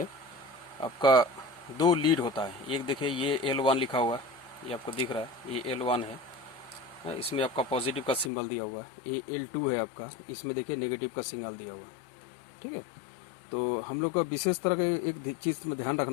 आपका दो लीड होता है। एक देखिए ये L1 लिखा हुआ है, ये आपको दिख रहा है, ये L1 है। इसमें आपका पॉजिटिव का सिंबल दिया हुआ है। ये L2 है आपका, इसमें देखिए नेगेटिव का सिंबल दिया हुआ है। ठीक है। तो हम लोग का विशेष तरह का एक चीज़ में ध्यान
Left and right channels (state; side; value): drops out; right; at 8.3 s